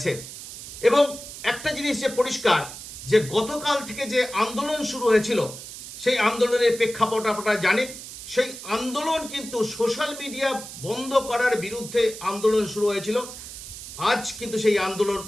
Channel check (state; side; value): noise; right; hiss, 12 dB below the sound